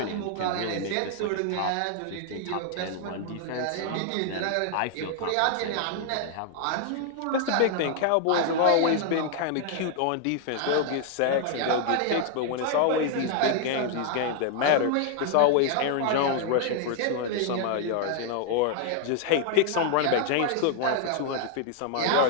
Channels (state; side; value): different; both; correlation 0.00